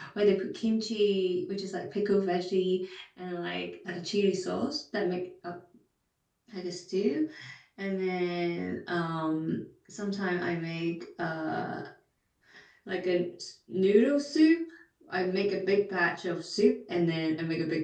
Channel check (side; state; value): both; identical; correlation 1.00